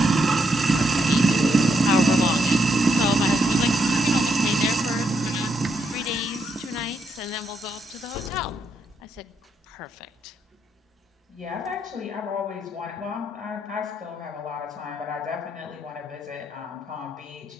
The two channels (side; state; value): both; normal; correlation 0.78